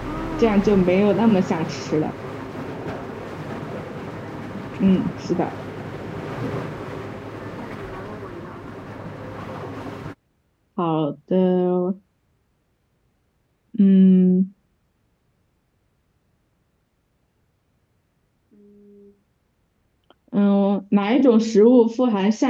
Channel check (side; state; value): both; identical; correlation 1.00